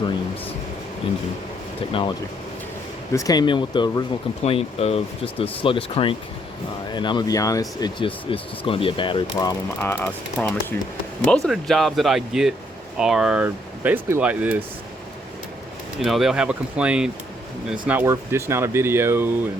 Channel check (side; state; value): both; normal; correlation 0.70